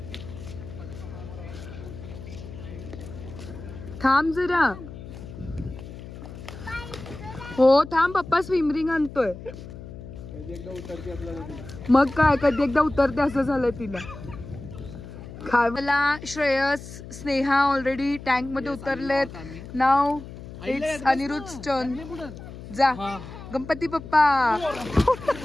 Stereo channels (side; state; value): left; noise; hum, 13 dB below the sound